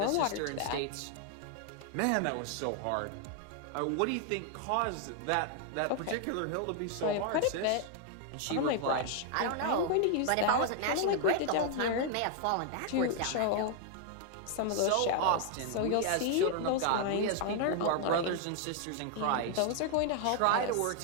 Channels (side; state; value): both; different; correlation 0.00